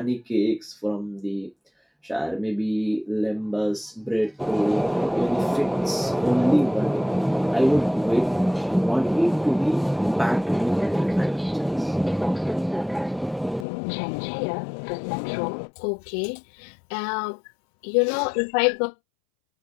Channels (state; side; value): drops out; right; at 13.7 s